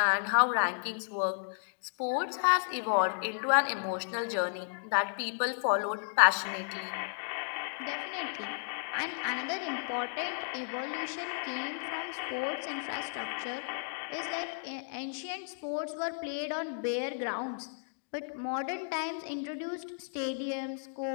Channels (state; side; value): silent; right; digital silence